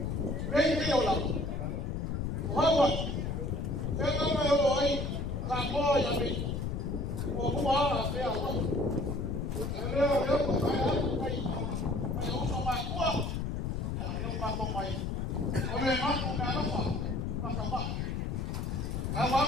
orang, Hawaii. Saya tak mahu orang kamu yang ini. Aku mahu saya awak. Saya usah makua. Yang makua mai. Oleh makua kalau apa? Makua. Kalau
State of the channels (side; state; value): left; noise; rumble, 2 dB below the sound